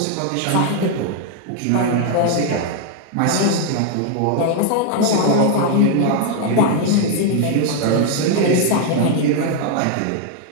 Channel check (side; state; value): both; different; correlation 0.00